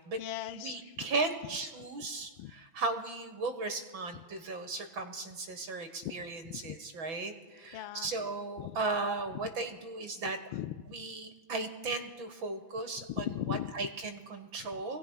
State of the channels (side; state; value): left; late; 6.1 ms